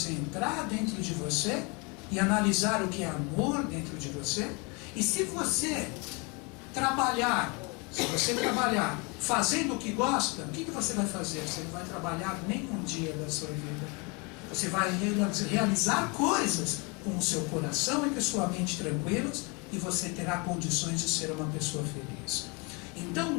entrar dentro de você e analisar o que é amor dentro de você? E se você trabalhar fazendo o que gosta, o que você vai fazer? Você não vai trabalhar nem um dia da sua vida. Você vai realizar coisas com o seu coração e com a sua mente tranquilos, e você terá condições de ser uma pessoa feliz. Então,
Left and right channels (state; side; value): quieter; right; 30.0 dB